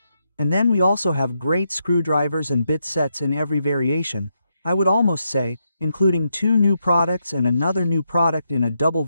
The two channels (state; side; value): inverted; both; correlation -0.82